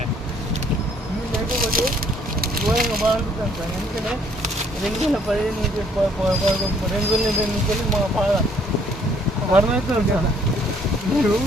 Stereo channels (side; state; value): both; normal; correlation 0.63